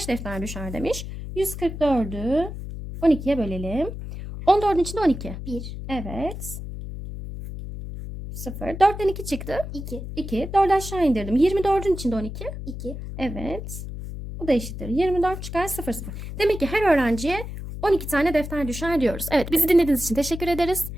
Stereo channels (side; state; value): left; noise; hum, 8 dB below the sound